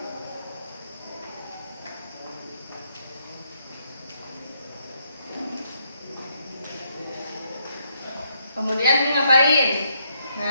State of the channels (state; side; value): inverted; both; correlation -0.76